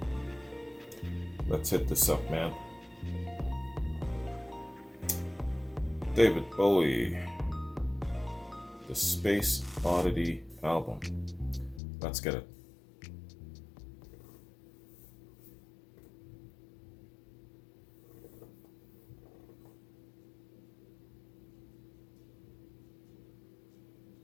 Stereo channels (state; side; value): drops out; right; at 11.8 s